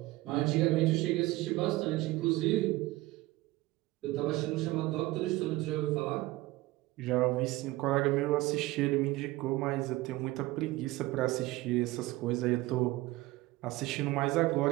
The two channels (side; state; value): left; quieter; 19.1 dB